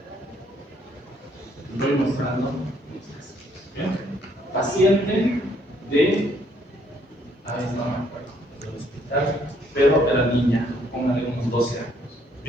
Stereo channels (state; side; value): normal; both; correlation 0.67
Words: Voy mostrando. ¿Bien? Paciente de, ahí no me acuerdo, del hospital, pero era niña, póngale unos 12 años.